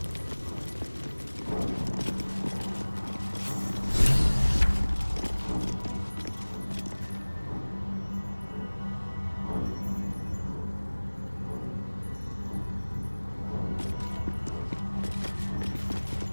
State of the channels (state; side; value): inverted; both; correlation -1.00